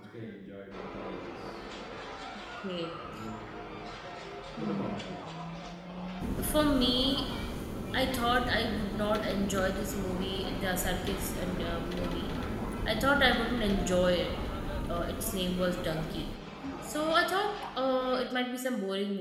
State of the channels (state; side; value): identical; both; correlation 1.00